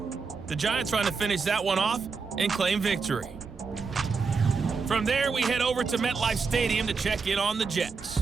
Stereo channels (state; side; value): quieter; left; 5.0 dB